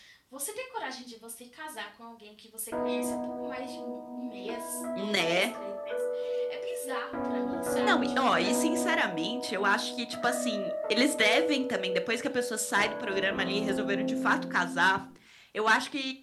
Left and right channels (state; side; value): identical; both; correlation 1.00